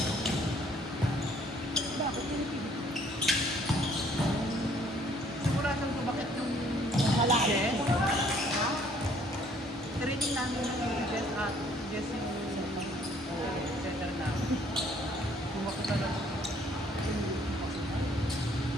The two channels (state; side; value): normal; both; correlation 0.61